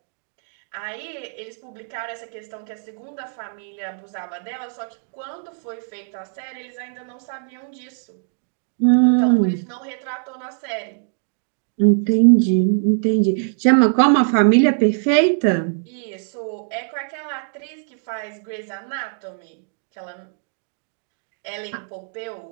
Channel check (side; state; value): left; silent; digital silence